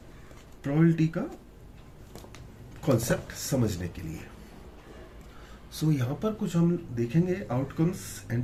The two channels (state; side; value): identical; both; correlation 1.00